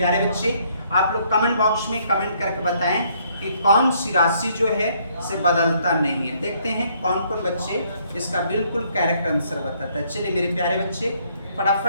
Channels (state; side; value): inverted; both; correlation -0.67